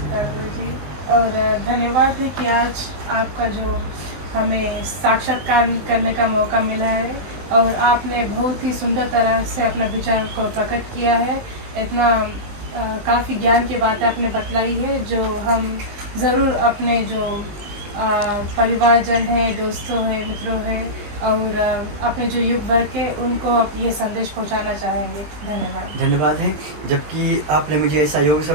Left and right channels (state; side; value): late; left; 19 ms